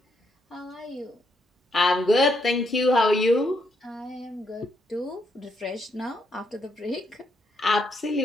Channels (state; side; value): normal; both; correlation 0.76